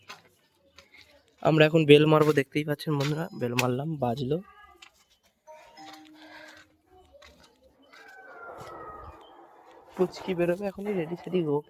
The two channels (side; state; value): both; identical; correlation 1.00